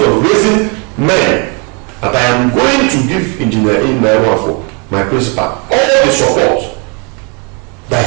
of raising men, that I am going to give Engineer Wafo, my principal, all the support that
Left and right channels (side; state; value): left; quieter; 34.4 dB